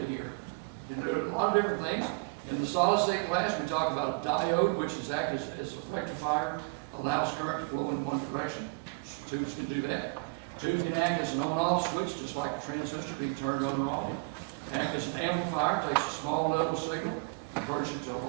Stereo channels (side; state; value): left; quieter; 32.7 dB